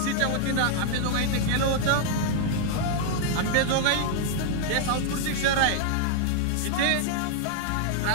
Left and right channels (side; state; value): both; different; correlation -0.01